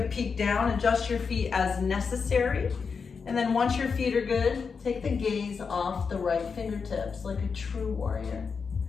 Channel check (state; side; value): quieter; right; 5.5 dB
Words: peek down, adjust your feet as necessary. And then once your feet are good, take the gaze off the right fingertips like a true warrior.